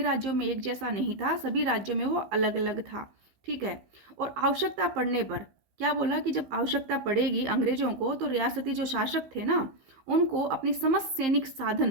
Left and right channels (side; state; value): left; late; 16 ms